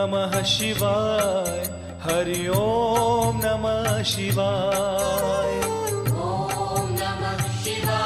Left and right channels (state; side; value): identical; both; correlation 1.00